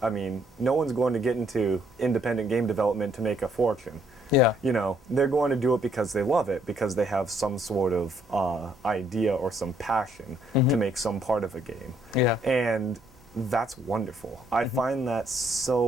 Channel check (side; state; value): right; noise; hum, 29 dB below the sound